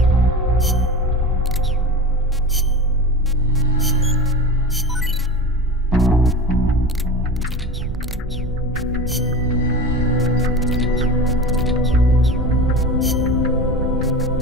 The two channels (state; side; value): normal; both; correlation 0.29